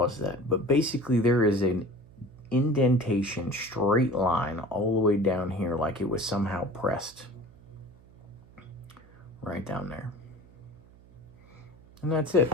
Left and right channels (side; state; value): right; noise; hum, 24 dB below the sound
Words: that, but basically there is an indentation, straight line all the way down here, like it was somehow pressed right down there. And that's it.